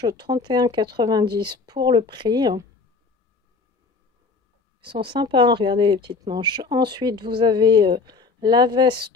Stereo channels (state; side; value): quieter; right; 4.4 dB